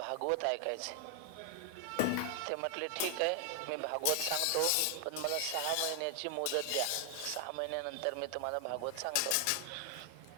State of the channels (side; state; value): both; different; correlation 0.00